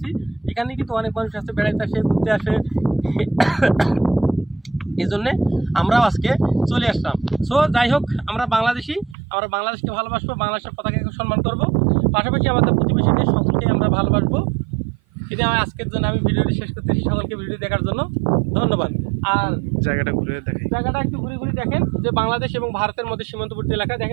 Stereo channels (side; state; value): left; drops out; at 9.2 s